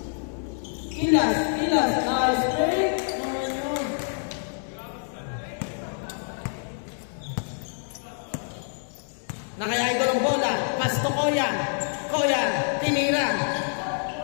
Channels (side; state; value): right; silent; 57 dB below the other